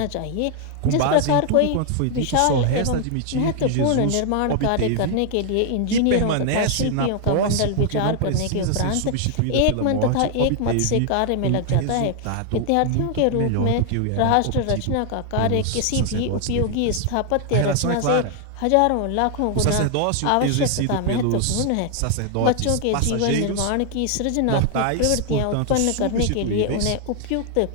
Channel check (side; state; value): both; different; correlation 0.00